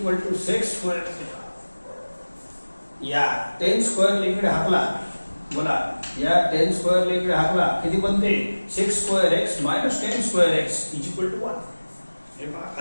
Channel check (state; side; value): inverted; both; correlation -1.00